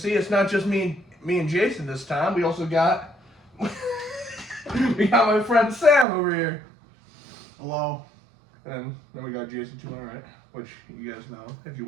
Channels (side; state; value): left; drops out; at 6.1 s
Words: it's not just me and Jason this time. We also got we got my friend Sam over here. Hello. And then we got Jason to my right, which you guys know if you